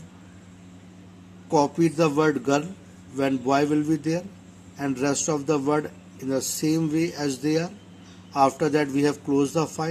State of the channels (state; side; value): identical; both; correlation 1.00